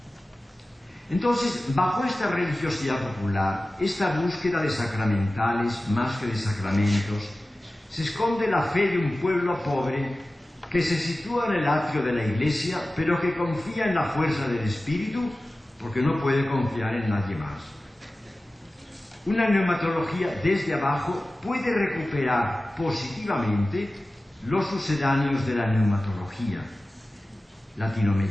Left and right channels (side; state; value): both; normal; correlation 0.96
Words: Entonces, bajo esta religiosidad popular, esta búsqueda de sacramentales más que de sacramentos, se esconde la fe de un pueblo pobre que se sitúa en el atrio de la Iglesia, pero que confía en la fuerza del Espíritu porque no puede confiar en nadie más. Una neumatología desde abajo puede recuperar positivamente los sucedáneos de la neumatología